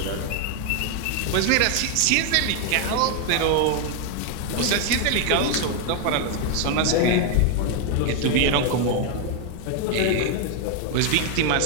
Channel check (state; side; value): different; both; correlation 0.01